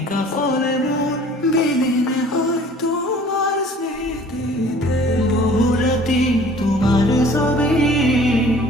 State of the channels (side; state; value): both; normal; correlation 0.50